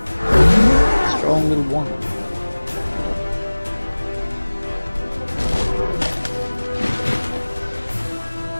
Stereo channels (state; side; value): inverted; both; correlation -1.00